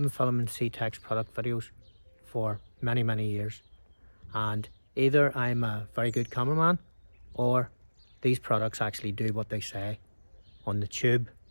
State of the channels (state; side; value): inverted; both; correlation -1.00